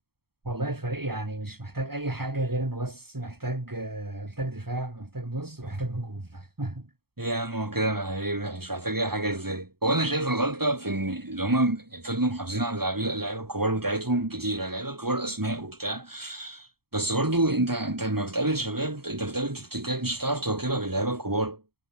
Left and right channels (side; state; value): left; late; 0.95 ms